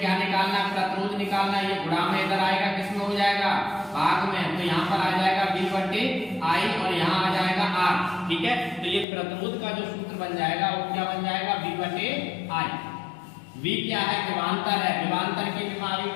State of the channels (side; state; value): right; drops out; at 9.1 s